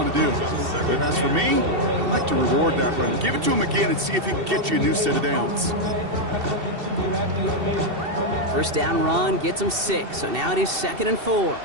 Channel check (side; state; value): left; late; 2.7 ms